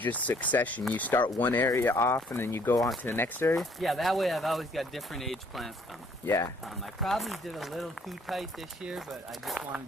succession. You start one area off and then you go on to the next area? Yeah, that way I've always got different age plants coming. Yeah. I probably did a little too tight this year, but I just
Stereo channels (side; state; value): both; normal; correlation 0.62